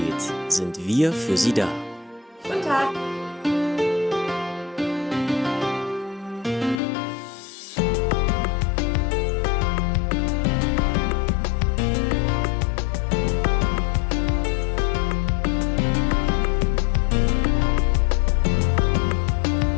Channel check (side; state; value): right; drops out; at 6.8 s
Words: sind wir für Sie da. Guten Tag.